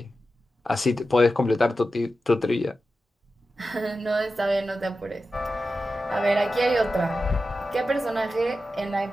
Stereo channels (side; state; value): both; normal; correlation 0.92